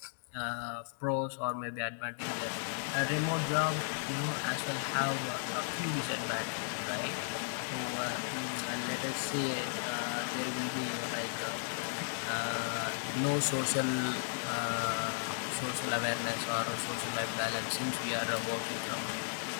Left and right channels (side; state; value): right; silent; digital silence